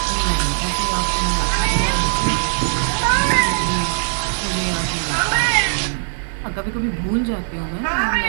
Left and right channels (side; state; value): left; silent; digital silence